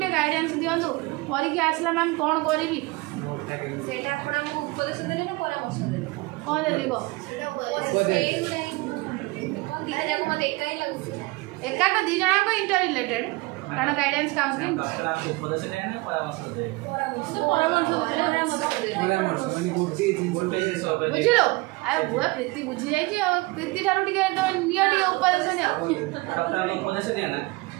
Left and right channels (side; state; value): left; quieter; 23.8 dB